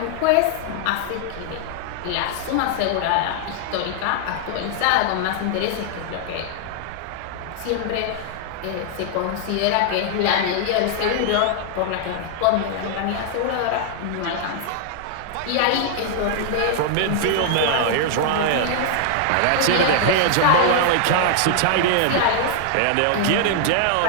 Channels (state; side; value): different; both; correlation 0.00